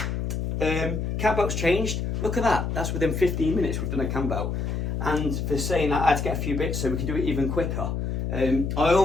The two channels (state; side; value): noise; left; hum, 2 dB below the sound